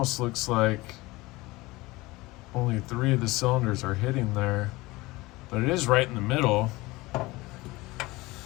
looks like only 3 of the cylinders are hitting there, but it is right in the middle.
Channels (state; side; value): quieter; right; 21.1 dB